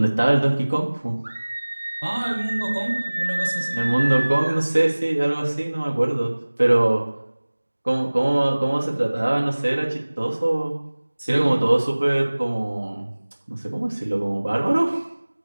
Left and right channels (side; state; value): both; inverted; correlation -1.00